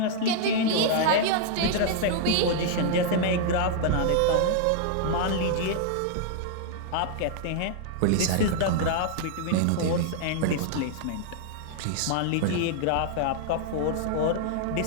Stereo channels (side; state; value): both; different; correlation -0.01